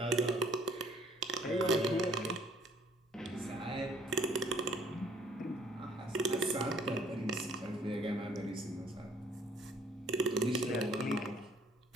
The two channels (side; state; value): both; normal; correlation 0.60